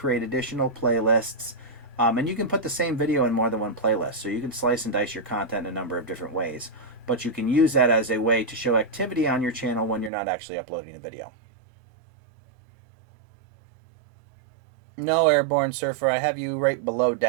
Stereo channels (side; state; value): left; drops out; at 10.1 s